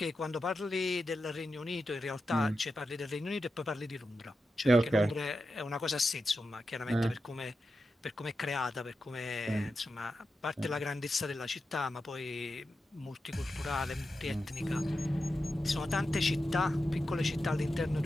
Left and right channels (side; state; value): both; normal; correlation 0.90